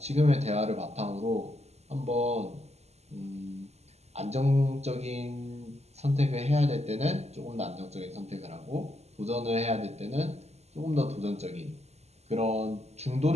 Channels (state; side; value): late; left; 0.31 ms